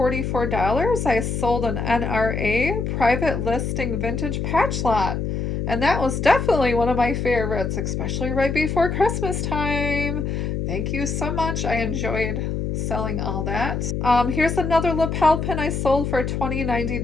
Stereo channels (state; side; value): noise; left; hum, 2 dB below the sound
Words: I sold an NRA private listing vintage patch lot. And that was definitely one of my favorites, especially right before Christmas time. Thank you so much. I enjoyed selling all that. Here's another lapel pin I sold for